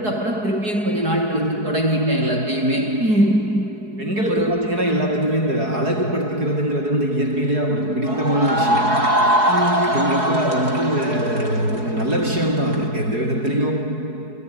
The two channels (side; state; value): left; late; 4.7 ms